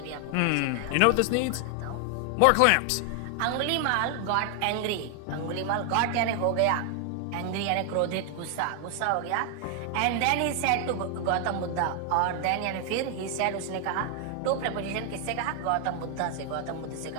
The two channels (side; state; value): both; different; correlation 0.00